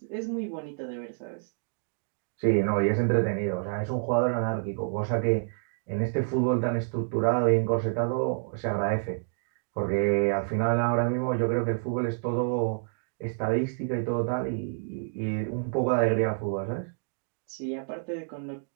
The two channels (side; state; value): left; silent; digital silence